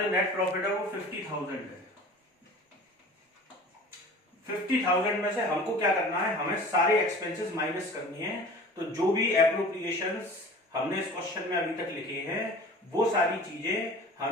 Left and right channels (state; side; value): normal; both; correlation 0.42